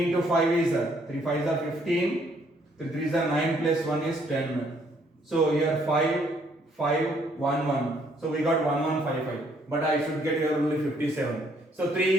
into 5 is 3 5s are 15, 3 3s are 9 plus 1 is 10. So here 5, 5, 1, 1. So we got 1155, but I should get here only 57. So 3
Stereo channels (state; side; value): normal; both; correlation 0.67